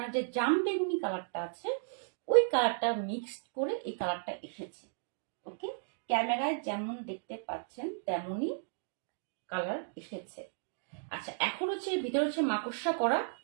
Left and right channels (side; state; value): left; silent; digital silence